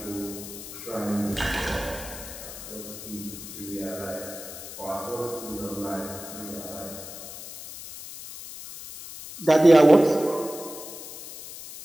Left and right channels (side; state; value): left; noise; hiss, 12 dB below the sound